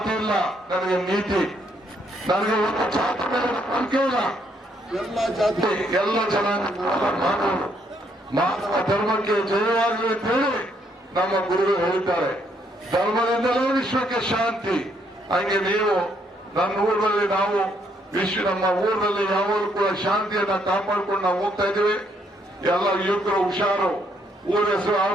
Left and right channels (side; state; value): both; normal; correlation 0.72